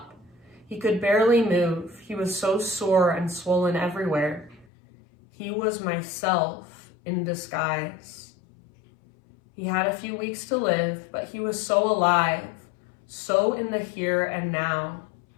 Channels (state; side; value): drops out; right; at 4.7 s